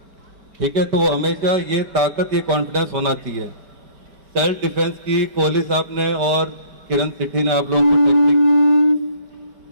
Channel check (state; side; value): late; left; 5.1 ms